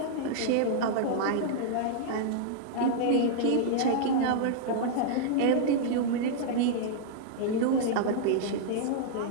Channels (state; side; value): different; both; correlation -0.01